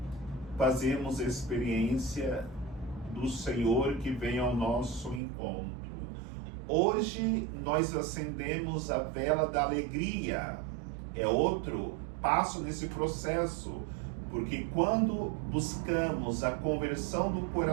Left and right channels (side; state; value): left; drops out; at 5.2 s